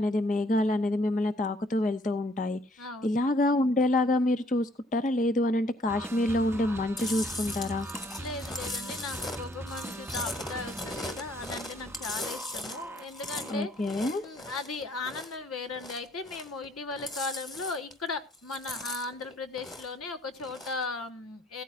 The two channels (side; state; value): both; normal; correlation 0.64